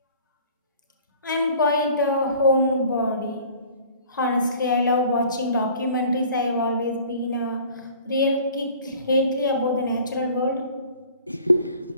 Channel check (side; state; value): both; inverted; correlation -0.49